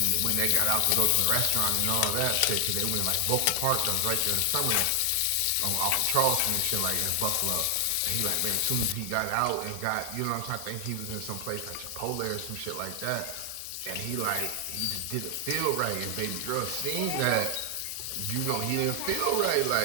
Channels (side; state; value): both; different; correlation 0.00